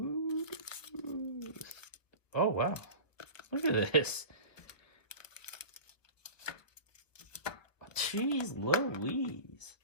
Oh, wow. Look at this. Jeez Louise.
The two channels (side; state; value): right; late; 1.1 ms